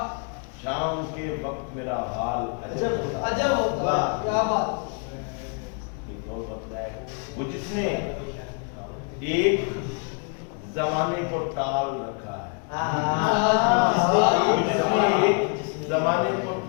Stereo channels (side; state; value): right; quieter; 39.0 dB